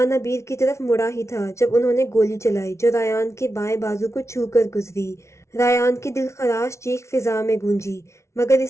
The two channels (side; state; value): right; late; 0.13 ms